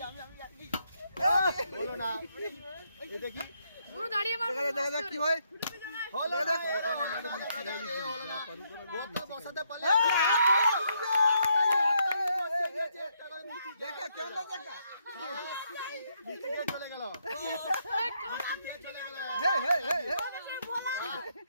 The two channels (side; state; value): both; inverted; correlation -0.75